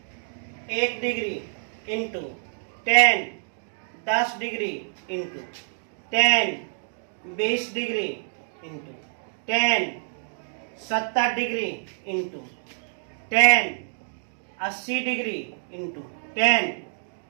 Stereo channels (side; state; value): left; silent; digital silence